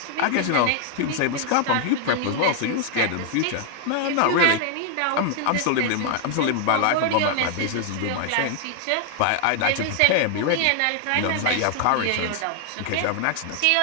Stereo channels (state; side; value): different; both; correlation 0.00